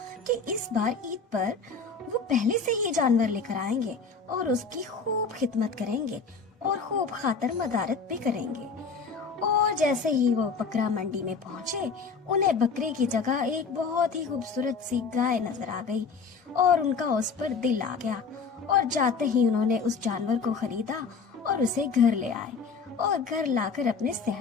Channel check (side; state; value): right; quieter; 4.9 dB